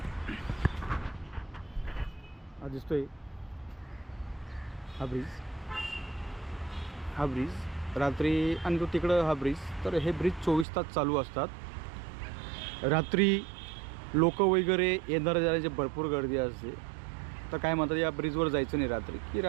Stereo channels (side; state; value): left; drops out; at 10.7 s